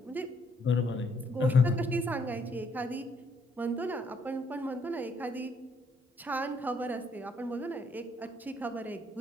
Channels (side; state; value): both; normal; correlation 0.69